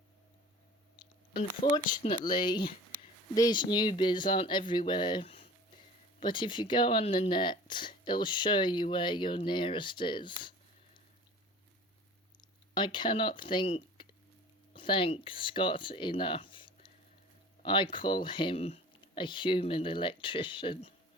Unfortunately, these newbies aren't everywhere. But if you go on the net, it'll show you where your nearest is. I cannot thank Scott enough. I call him a human electrician,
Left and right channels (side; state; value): both; normal; correlation 0.42